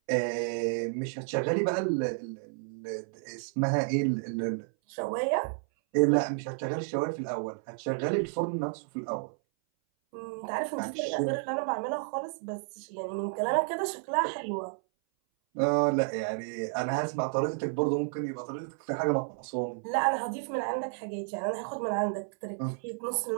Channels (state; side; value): silent; left; 57 dB below the other